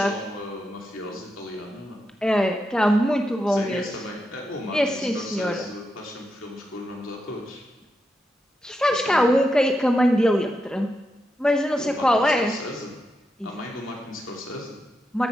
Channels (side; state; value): both; normal; correlation 0.86